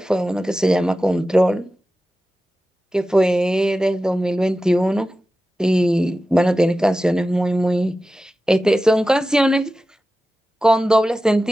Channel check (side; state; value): both; normal; correlation 0.94